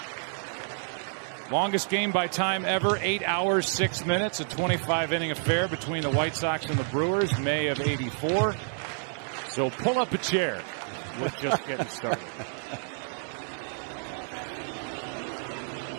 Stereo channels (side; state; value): left; silent; 58 dB below the other